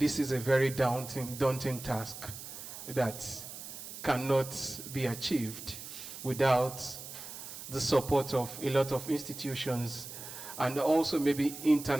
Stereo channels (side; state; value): right; noise; hiss, 11 dB below the sound